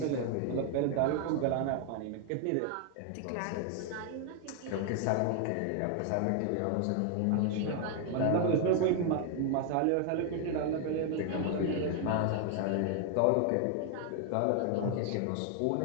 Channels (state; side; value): different; both; correlation 0.00